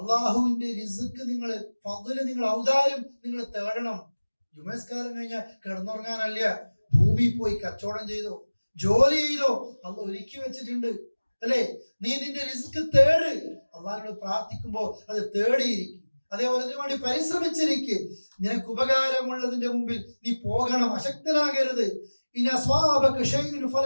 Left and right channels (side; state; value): both; inverted; correlation -1.00